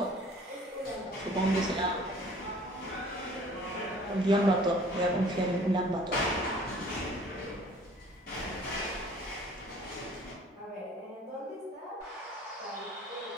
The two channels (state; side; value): normal; both; correlation 0.51